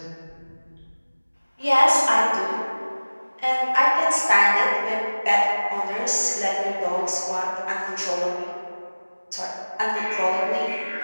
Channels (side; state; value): both; inverted; correlation -1.00